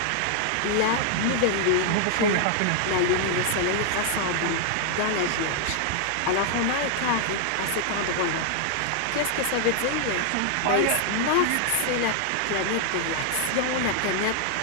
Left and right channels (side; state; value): both; different; correlation 0.00